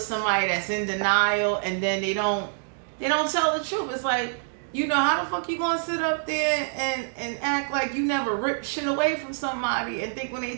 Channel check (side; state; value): left; silent; digital silence